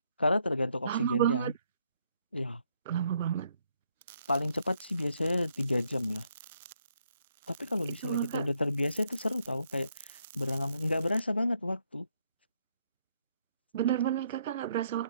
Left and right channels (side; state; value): both; inverted; correlation -0.72